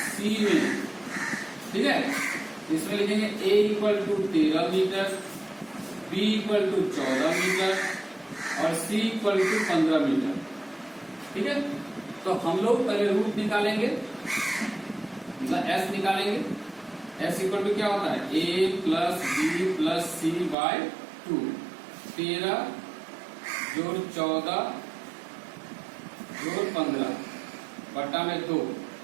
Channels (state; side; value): drops out; left; at 20.6 s